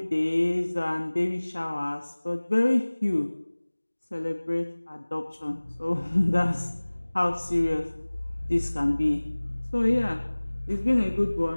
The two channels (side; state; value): both; inverted; correlation -1.00